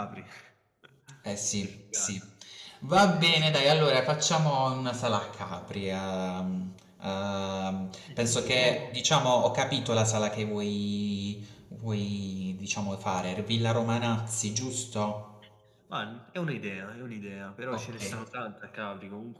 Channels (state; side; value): identical; both; correlation 1.00